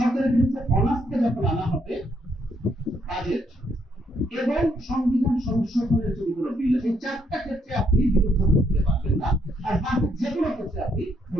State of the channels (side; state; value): both; normal; correlation 0.73